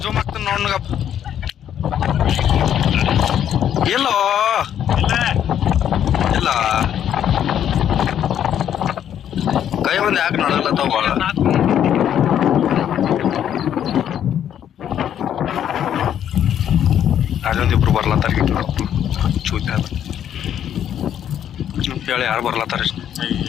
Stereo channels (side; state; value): right; quieter; 9.9 dB